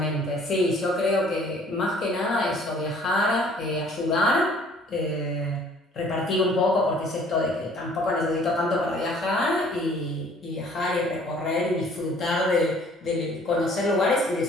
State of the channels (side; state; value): both; normal; correlation 0.55